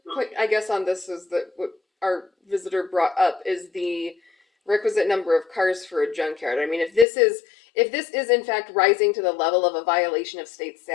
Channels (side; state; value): right; drops out; at 7.1 s